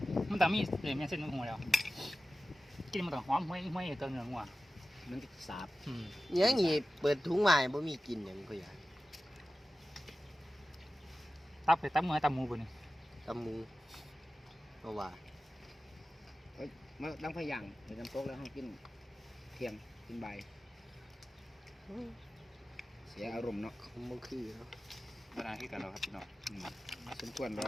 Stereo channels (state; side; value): normal; both; correlation 0.94